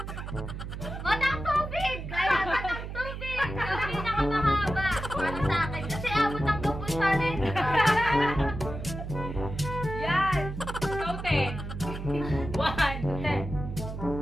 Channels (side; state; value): right; noise; hum, 7 dB below the sound